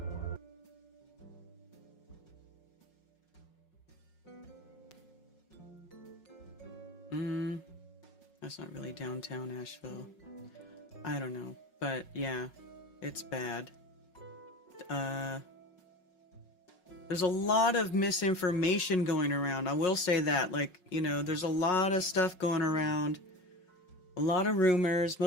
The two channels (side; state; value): right; late; 5.5 ms